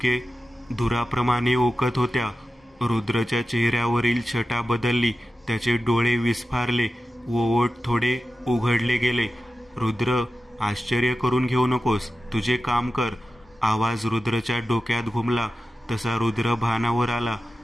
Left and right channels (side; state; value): both; normal; correlation 0.93